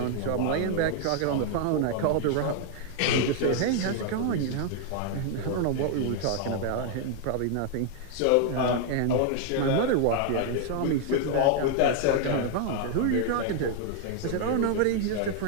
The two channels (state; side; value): different; both; correlation 0.00